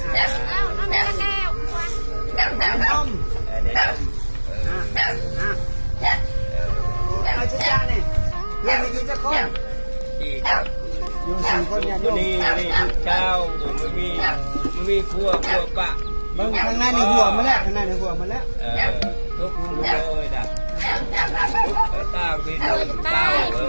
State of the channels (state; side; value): inverted; both; correlation -1.00